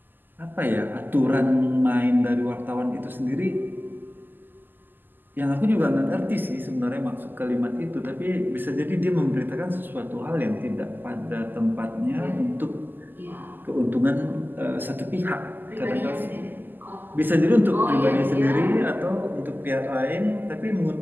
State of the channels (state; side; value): late; left; 0.090 ms